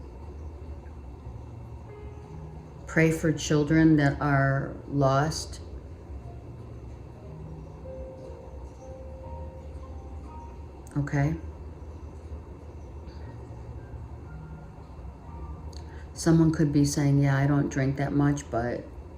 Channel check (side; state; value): both; identical; correlation 1.00